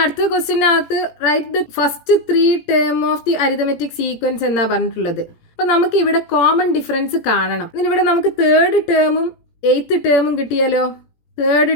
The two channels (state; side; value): late; right; 17 ms